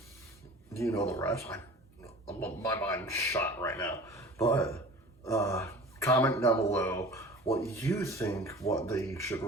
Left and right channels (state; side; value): normal; both; correlation 0.41